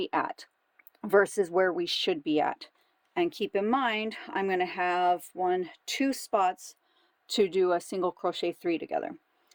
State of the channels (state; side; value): identical; both; correlation 1.00